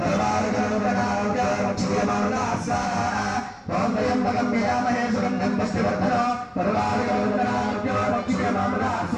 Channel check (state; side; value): identical; both; correlation 1.00